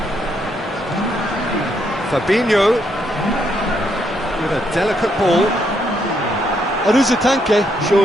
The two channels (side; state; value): both; normal; correlation 0.75